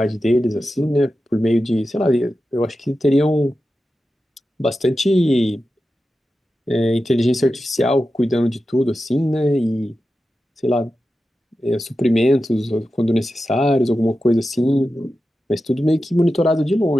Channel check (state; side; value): normal; both; correlation 0.92